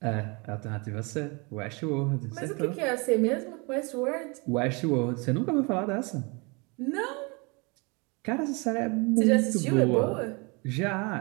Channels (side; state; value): left; quieter; 29.6 dB